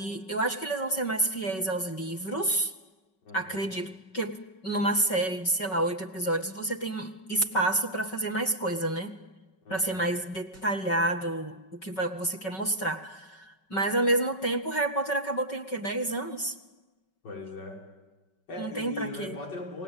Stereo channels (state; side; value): late; right; 5.3 ms